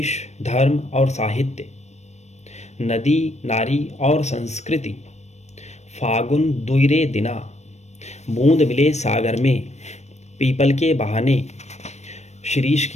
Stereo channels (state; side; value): late; right; 0.32 ms